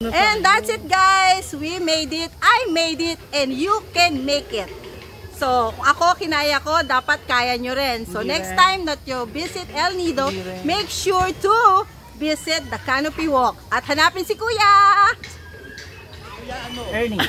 And that's it guys. We made it. I made it and you can make it. So, ako kinaya ko, dapat kaya nyo rin. So, next time that you visit El Nido, make sure to visit the Canopy Walk. At hanapin si Kuya! Ernie.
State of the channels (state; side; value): identical; both; correlation 1.00